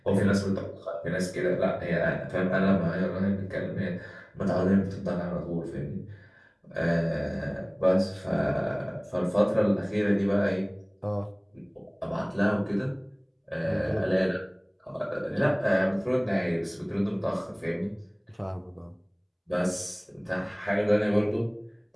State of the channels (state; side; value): identical; both; correlation 1.00